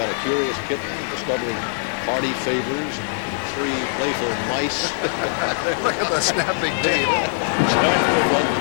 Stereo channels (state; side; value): silent; right; digital silence